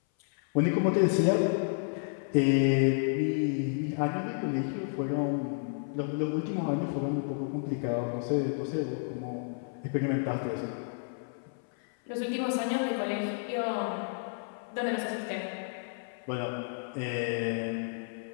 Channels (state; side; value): silent; right; 57 dB below the other